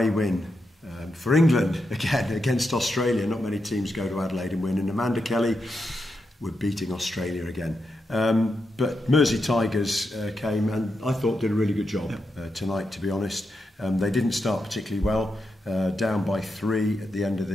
win for England again against Australia. Not many teams go to Adelaide and win, and Amanda Kelly were beating Australia again. But Mersey Tigers came and I thought did a really good job tonight, to be honest. They didn't start particularly well, down by 3 at the end of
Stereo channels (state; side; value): normal; both; correlation 0.86